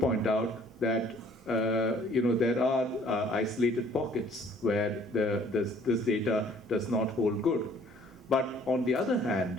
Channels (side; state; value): both; normal; correlation 0.58